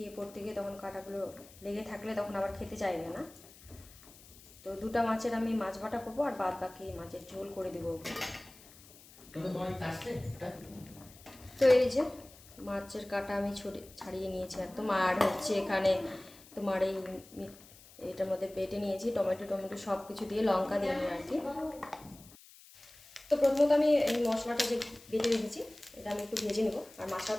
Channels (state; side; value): noise; left; hiss, 22 dB below the sound